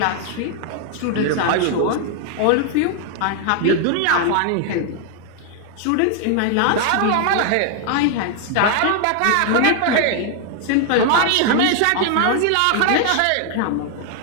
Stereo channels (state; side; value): different; both; correlation 0.00